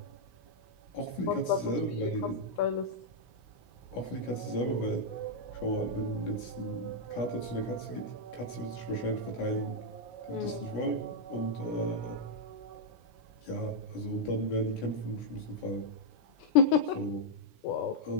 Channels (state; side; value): late; right; 16 ms